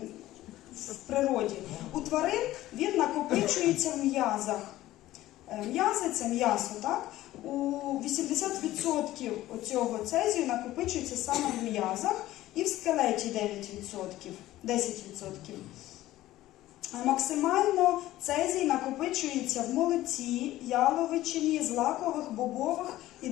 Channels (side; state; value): right; quieter; 15.5 dB